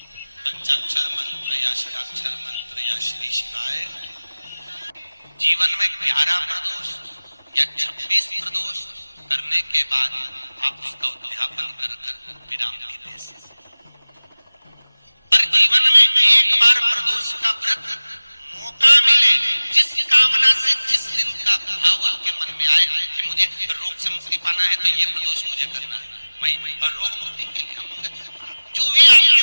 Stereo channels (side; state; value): both; inverted; correlation -1.00